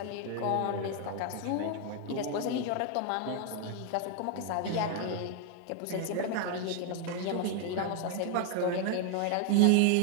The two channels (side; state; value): both; different; correlation 0.00